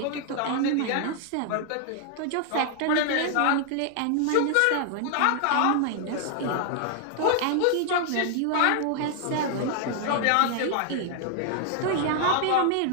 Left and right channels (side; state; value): both; different; correlation 0.00